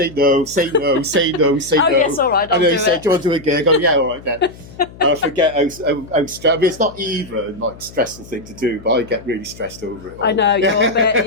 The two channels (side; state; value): left; noise; hum, 19 dB below the sound